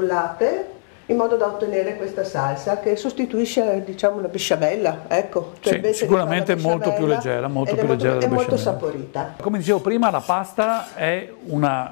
in modo da ottenere questa salsa che sostituisce, diciamo, la besciamella, ecco, cioè sì, invece di fare la besciamella molto più leggera, è molto saporita. Come dicevo prima, la pasta è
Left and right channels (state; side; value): silent; right; 65 dB below the other